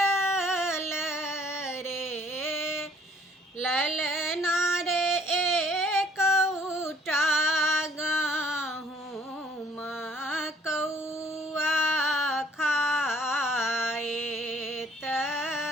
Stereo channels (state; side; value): normal; both; correlation 0.60